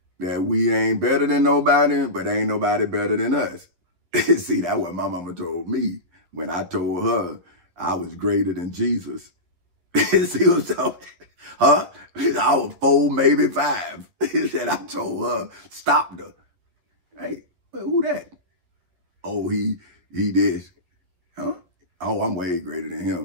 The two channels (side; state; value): left; late; 11 ms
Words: that we ain't better than nobody, but ain't nobody better than us. See, that's what my mama told me when I told her I was greater than Jesus. See what I'm talking? Huh? I was 4, maybe 5. Said I told her, stopped her. Hey, who that? Oh, he this. Huh? Oh, I'm way greater than